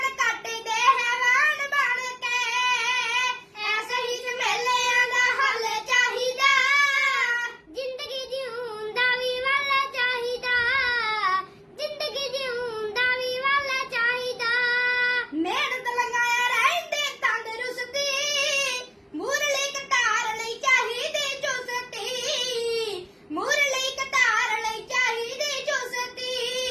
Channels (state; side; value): identical; both; correlation 1.00